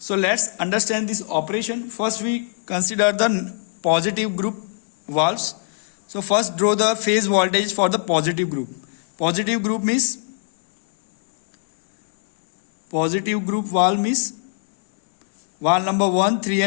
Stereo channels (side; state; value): right; silent; 64 dB below the other